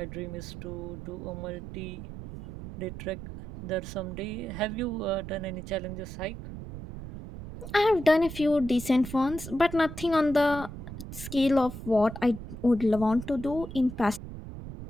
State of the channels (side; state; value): right; noise; rumble, 11 dB below the sound